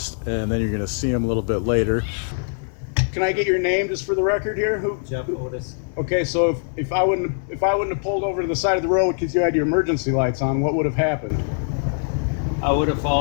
and then you're gonna see him a little bit later. Can I get your name just for the record here? Otis. Okay, so if I wouldn't have pulled over to the side of the road because you had your emergency lights on, what would have happened? I would have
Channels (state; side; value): silent; right; 61 dB below the other